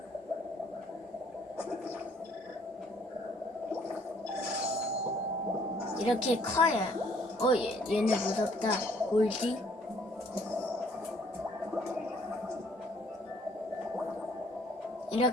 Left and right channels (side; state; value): both; normal; correlation 0.62